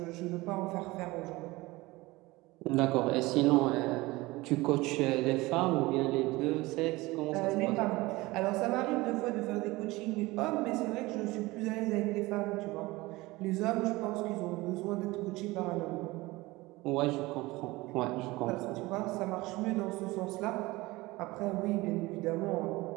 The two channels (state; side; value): quieter; left; 20.8 dB